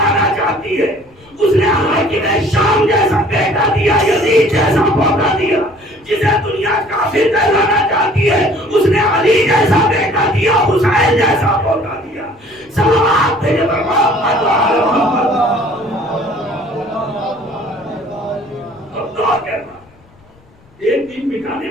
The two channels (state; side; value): noise; left; rumble, 29 dB below the sound